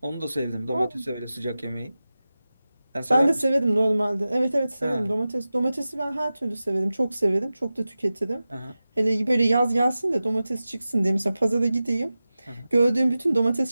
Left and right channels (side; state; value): both; inverted; correlation -0.95